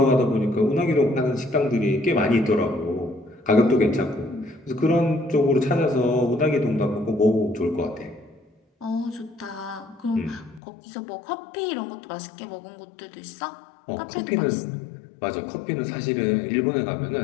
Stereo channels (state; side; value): drops out; right; at 10.6 s